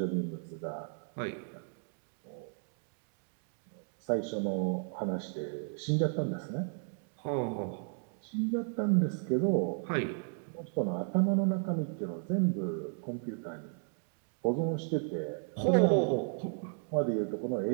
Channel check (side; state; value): left; silent; 55 dB below the other